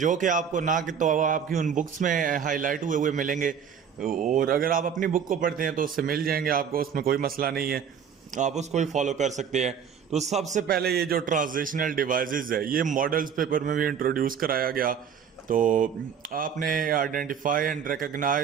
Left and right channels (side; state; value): left; quieter; 7.6 dB